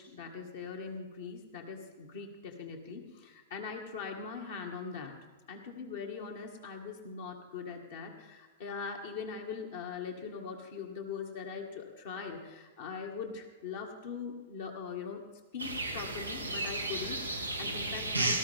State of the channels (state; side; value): inverted; both; correlation -0.35